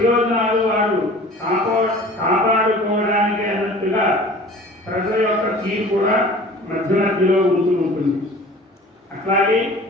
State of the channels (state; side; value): normal; both; correlation 0.44